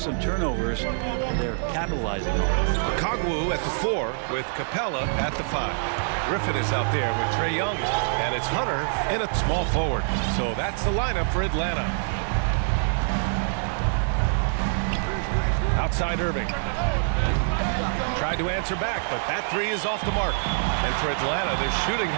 turnovers. They're capitalizing on it. Kongwu at the 4 with Capella at the 5. Griffin is out there with Trae Young, and it's Hunter in a small forward. So that's the lineup for Atlanta. Outside Irving. Tried to answer back, but that 3 is off the mark. And for Atlanta, their shooting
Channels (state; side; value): silent; left; digital silence